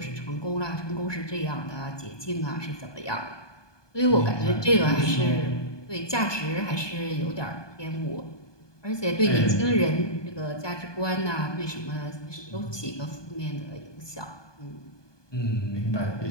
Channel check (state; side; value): late; right; 1.2 ms